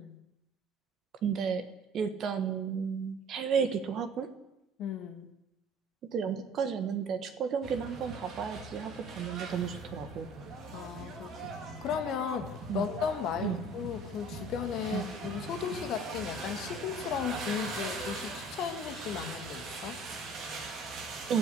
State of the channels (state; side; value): normal; both; correlation 0.49